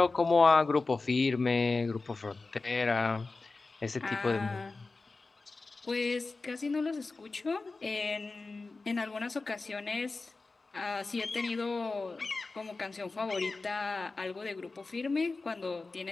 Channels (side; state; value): right; quieter; 3.7 dB